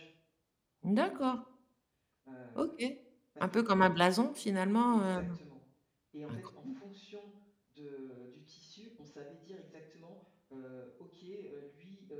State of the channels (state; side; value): identical; both; correlation 1.00